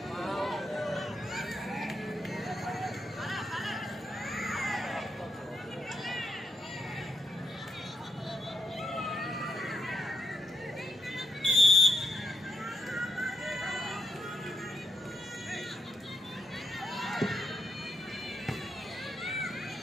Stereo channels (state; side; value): normal; both; correlation 0.80